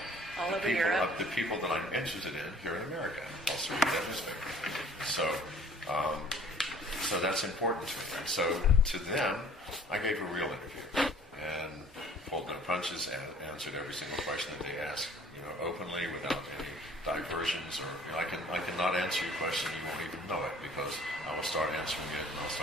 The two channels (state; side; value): normal; both; correlation 0.53